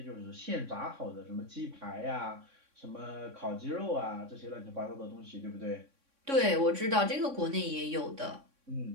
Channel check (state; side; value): late; left; 3.6 ms